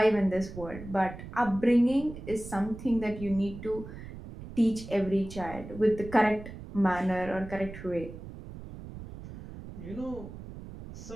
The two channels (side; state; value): right; noise; rumble, 13 dB below the sound